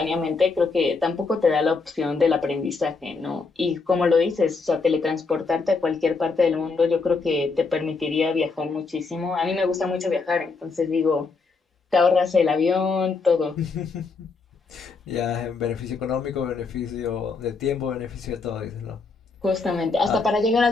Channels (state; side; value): quieter; right; 4.4 dB